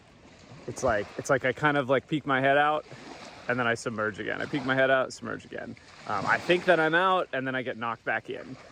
it's like I kind of like peek my head out and then I submerge again. I peek my head out, submerge again. I think that I'm out and then I get knocked back in.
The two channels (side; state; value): both; identical; correlation 1.00